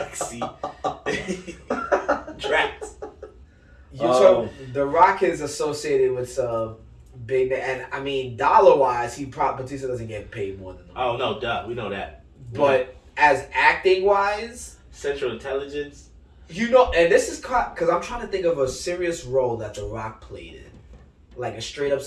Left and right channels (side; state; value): both; identical; correlation 1.00